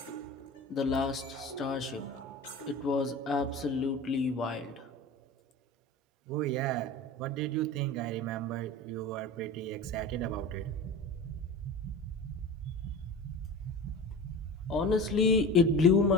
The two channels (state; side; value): normal; both; correlation 0.33